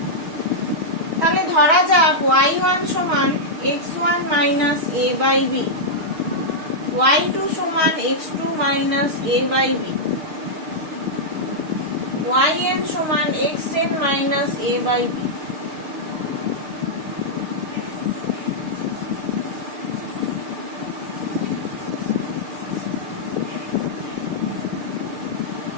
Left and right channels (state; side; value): late; left; 6.7 ms